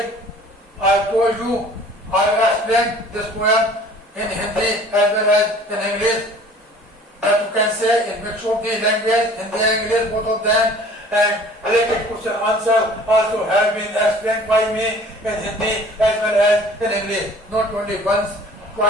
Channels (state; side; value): normal; both; correlation 0.49